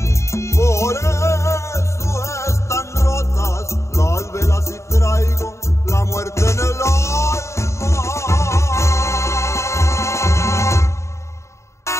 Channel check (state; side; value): late; right; 0.14 ms